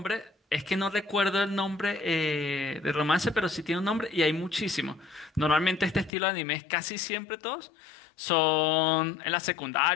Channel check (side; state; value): right; drops out; at 6.1 s